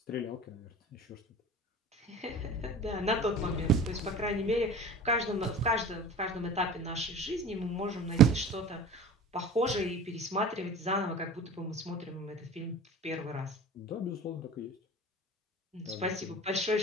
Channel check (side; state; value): both; normal; correlation 0.39